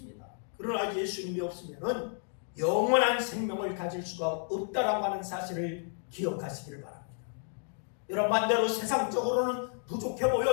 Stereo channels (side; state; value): right; silent; 57 dB below the other